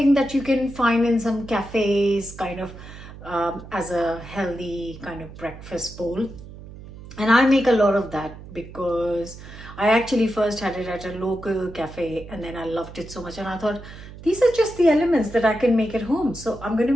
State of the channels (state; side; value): noise; right; hum, 15 dB below the sound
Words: that you can find in some cafes, kind of as a healthy kind of breakfast bowl. And I make a lot of that because I actually first had it at a local cafe and then I loved it so much and I thought these are just the elements that I can make at home, so I'm going to